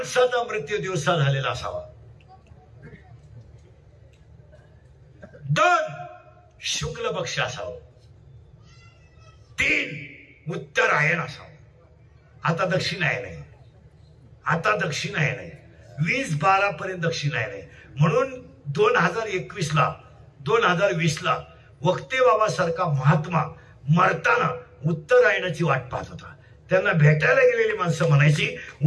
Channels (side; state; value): both; identical; correlation 1.00